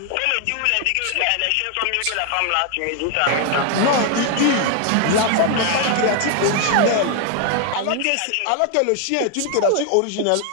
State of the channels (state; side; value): different; both; correlation 0.00